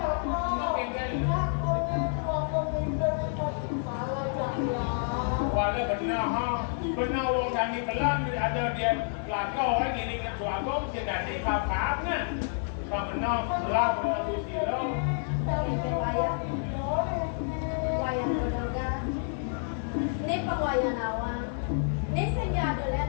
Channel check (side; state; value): right; silent; 58 dB below the other